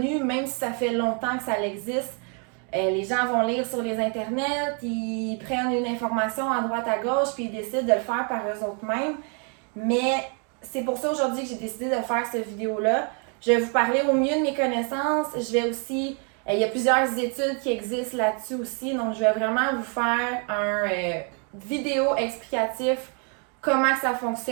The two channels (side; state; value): left; quieter; 38.6 dB